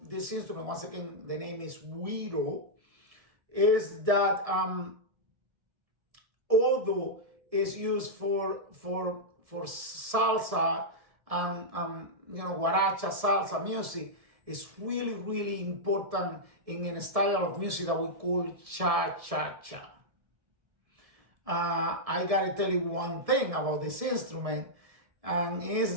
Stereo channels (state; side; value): late; left; 1.7 ms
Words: this instrument, once again, the name is Güiro, is that although it's used for salsa and guaracha salsa music, is really, really important in a style of music that we call cha-cha-cha. I gotta tell you one thing about this instrument, and